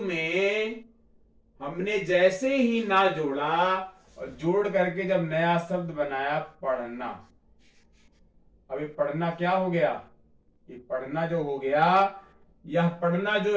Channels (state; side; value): identical; both; correlation 1.00